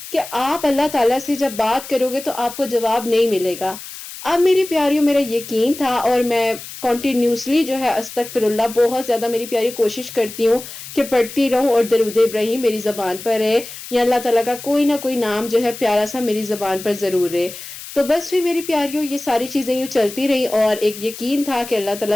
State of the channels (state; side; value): noise; left; hiss, 13 dB below the sound